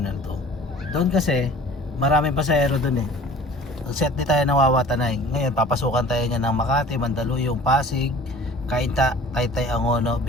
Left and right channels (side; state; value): both; normal; correlation 0.46